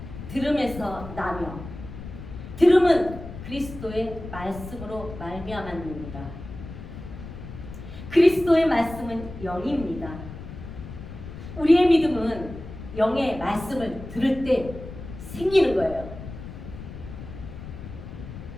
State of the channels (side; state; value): left; noise; rumble, 12 dB below the sound